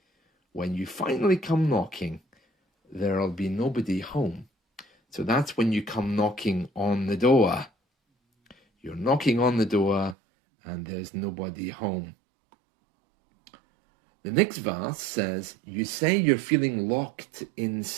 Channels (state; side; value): drops out; left; at 10.2 s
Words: when you finally come knocking, there'll be nobody home. So that's when you come knocking on the door. You're knocking on the door and there's nobody home. The next verse says, you say you're feeling locked